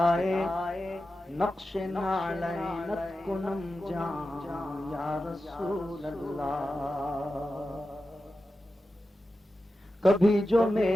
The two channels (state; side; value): normal; both; correlation 0.92